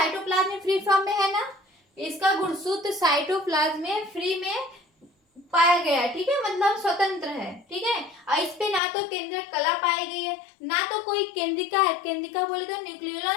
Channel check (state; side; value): drops out; right; at 8.8 s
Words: में फ्री फॉर्म में है ना, इसका गुणसूत्र साइटोप्लाज्म में फ्री में पाया गया है। ठीक है, मतलब स्वतंत्र है। ठीक है, और इस पे ना तो केंद्रक कला पाई गई है, ना तो कोई केंद्रिका है, केंद्रिका बोले तो